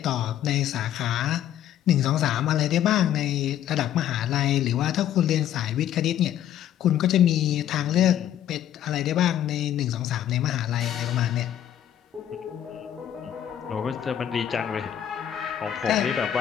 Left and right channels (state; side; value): quieter; right; 10.9 dB